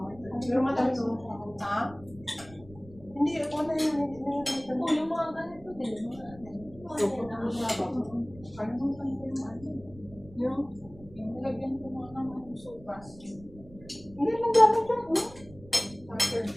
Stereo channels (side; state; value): right; noise; rumble, 21 dB below the sound